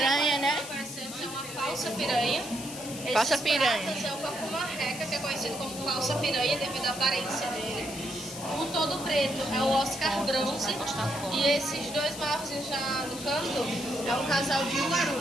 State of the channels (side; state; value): left; noise; hiss, 11 dB below the sound